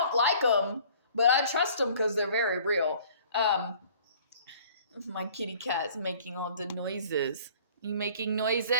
like them, but I trust them because they're very real. My kitty cat's making all the noises. You making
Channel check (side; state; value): both; inverted; correlation -0.52